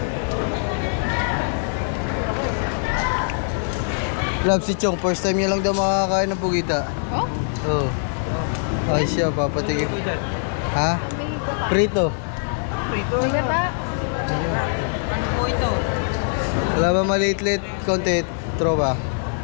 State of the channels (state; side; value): silent; right; digital silence